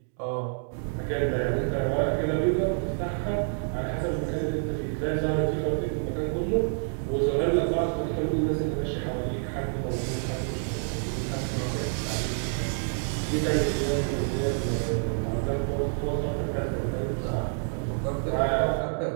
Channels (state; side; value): silent; left; 59 dB below the other